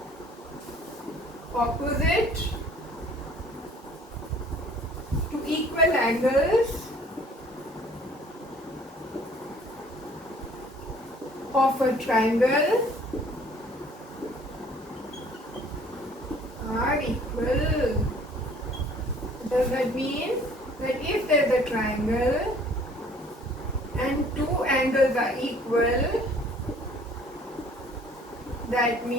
opposite to equal angles of a triangle are equal. Does that mean that if there is a triangle and two angles are equal, that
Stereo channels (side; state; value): both; normal; correlation 0.55